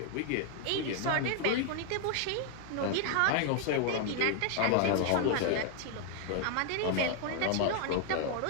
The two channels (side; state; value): both; different; correlation 0.00